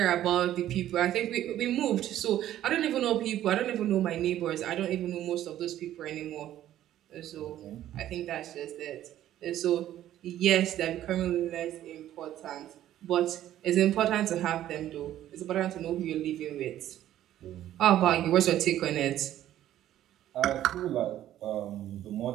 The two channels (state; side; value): quieter; left; 12.5 dB